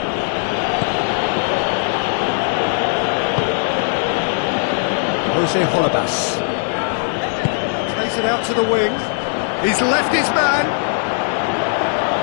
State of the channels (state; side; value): silent; right; 63 dB below the other